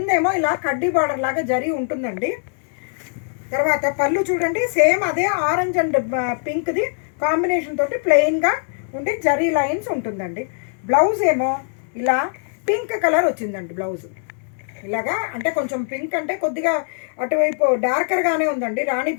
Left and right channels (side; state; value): right; silent; 64 dB below the other